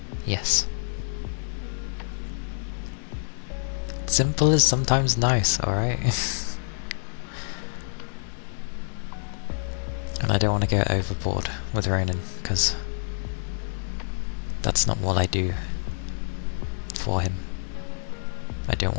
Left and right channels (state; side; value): silent; right; digital silence